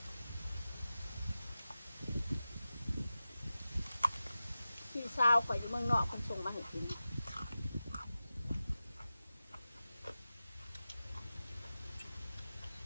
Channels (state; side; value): inverted; both; correlation -0.94